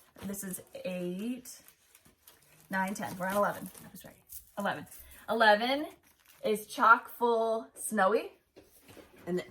This is 8, 9, 10. We're on 11. I was right. 11. 11 is Chock Full Snowy. And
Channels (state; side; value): identical; both; correlation 1.00